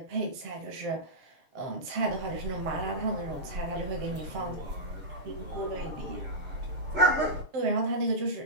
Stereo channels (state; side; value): late; left; 7.5 ms